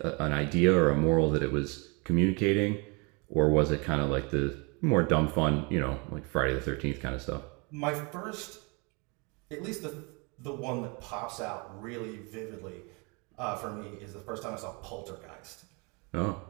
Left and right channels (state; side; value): quieter; left; 30.9 dB